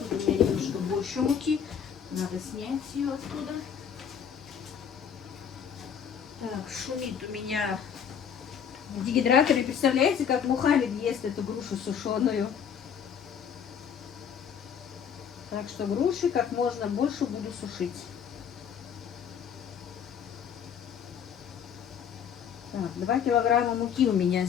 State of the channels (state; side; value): quieter; right; 7.8 dB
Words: у меня немножко больше муки. Надо снять ее оттуда. Так, шумит у меня в дегидраторе. Представляете, как Мухаммед ест эту грушу сушеную. Так что груши как можно больше буду сушить. Так, 2 килограмма муки у меня